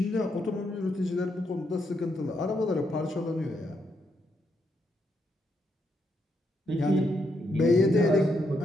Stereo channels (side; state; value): both; normal; correlation 0.78